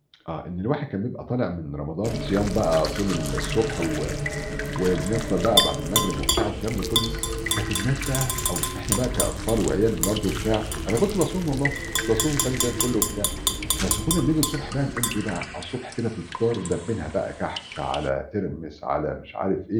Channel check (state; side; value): identical; both; correlation 1.00